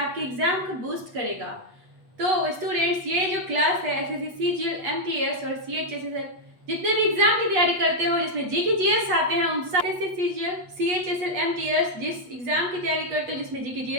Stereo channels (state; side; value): late; left; 8.3 ms